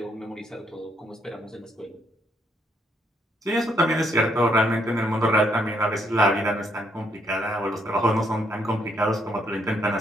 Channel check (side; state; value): both; normal; correlation 0.73